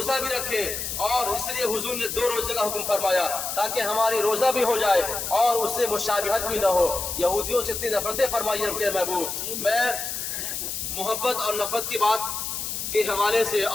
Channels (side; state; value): left; noise; hiss, 4 dB below the sound